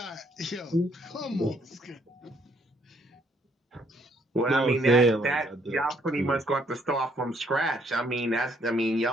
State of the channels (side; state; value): both; normal; correlation 0.67